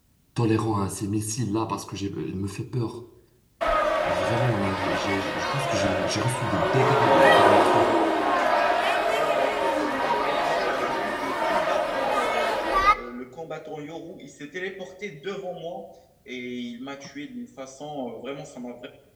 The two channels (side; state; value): both; identical; correlation 1.00